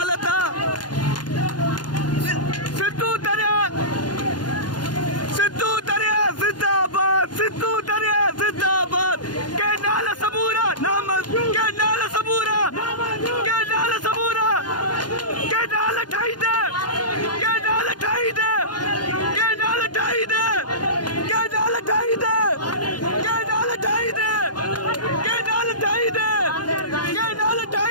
आहे। सिंधू दरिया, सिंधू दरिया जिंदाबाद, सिंधू दरिया जिंदाबाद। के नाल सबूरा नामंज़ूर, के नाल सबूरा, के नाल सबूरा, के नाल ठाई दे, के नाल ठाई दे, के नाल ठाई दे, के नाल ठाई दे, के नाल ठाई दे, के नाल ठाई दे, के नाल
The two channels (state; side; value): late; right; 0.70 ms